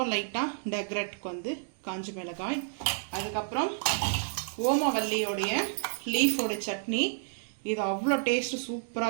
லைட்டாக டெக்ரேட்டுக்கு வந்து காஞ்ச மிளகாய், அதுக்கப்புறம் ஓமவல்லியோடைய லீஃபோட சட்னி. இது அவ்வளோ டேஸ்ட்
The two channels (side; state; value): left; silent; digital silence